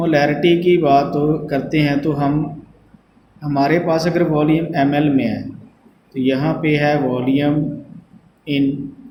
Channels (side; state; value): both; identical; correlation 1.00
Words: की बात करते हैं तो हम हमारे पास अगर वॉल्यूम ml में है तो यहाँ पे है वॉल्यूम इन